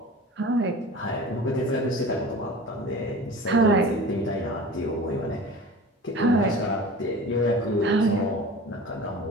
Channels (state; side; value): normal; both; correlation 0.37